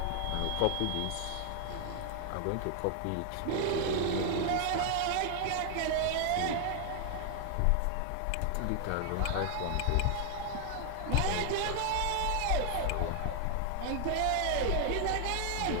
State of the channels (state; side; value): different; both; correlation 0.00